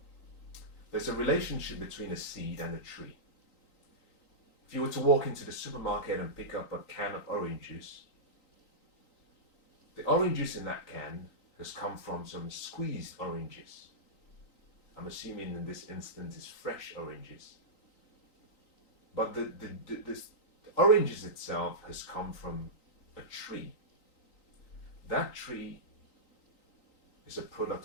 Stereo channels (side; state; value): right; late; 3.9 ms